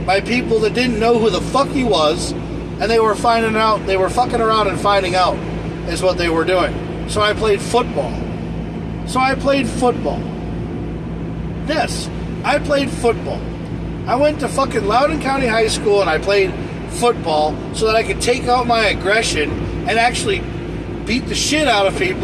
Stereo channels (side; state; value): both; identical; correlation 1.00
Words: by people that didn't know who the fuck he was, and they were fucking around and finding out is what they were doing. So I played football. Yes, I played football. I went to fucking Loudoun County High School, and I played football so that I could take out my aggression and actually beat the shit out of